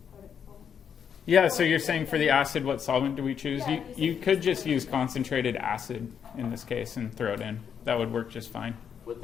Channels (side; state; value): right; quieter; 7.7 dB